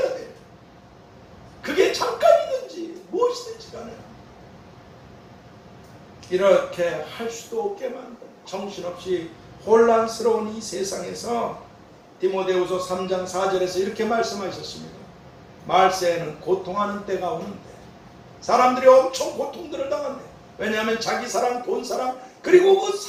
돼요. 그게 잠깐이든지 무엇이든지 간에 이렇게 할 수도 없게 만든 정신없이 혼란스러운 이 세상에서 디모데후서 3장 4절에서 이렇게 말씀하셨습니다. 말세에는 고통하는 때가 오는데, 사람들이 엄청 고통들을 당한대. 왜냐하면 자기 사랑, 돈 사랑, 그리고 그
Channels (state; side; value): identical; both; correlation 1.00